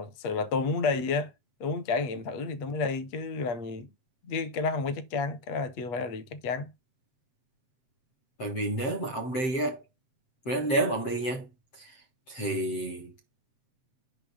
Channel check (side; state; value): right; late; 7.7 ms